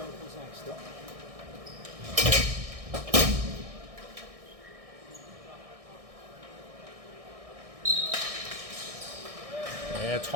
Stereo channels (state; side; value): late; left; 1.6 ms